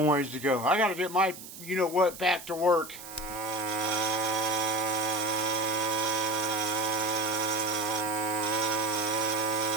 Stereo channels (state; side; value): noise; right; hiss, 14 dB below the sound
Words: ways to go. I got to get my you-know-what back to work.